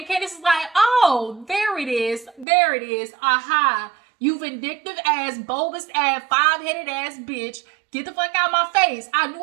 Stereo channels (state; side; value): drops out; left; at 2.5 s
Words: Candiace is like, oh, there it is. There it is. Aha. You vindictive ass, bulbous ass, 5-headed ass bitch. Get the fuck out of my face. I knew